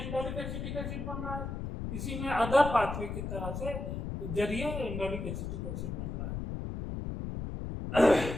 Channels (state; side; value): noise; left; rumble, 5 dB below the sound